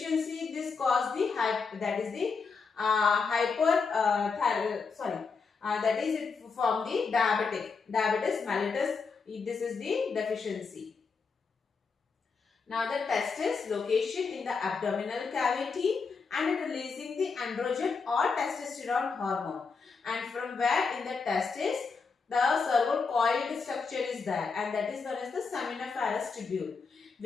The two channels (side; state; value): right; quieter; 5.0 dB